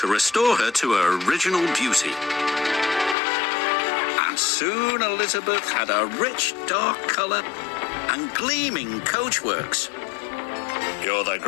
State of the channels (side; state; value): right; drops out; at 3.2 s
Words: restore her to her original beauty. And soon Elizabeth had a rich dark colour and gleaming coachworks. "You're the